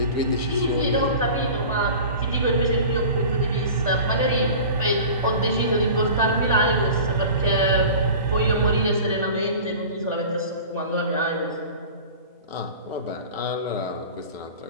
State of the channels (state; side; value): inverted; both; correlation -0.38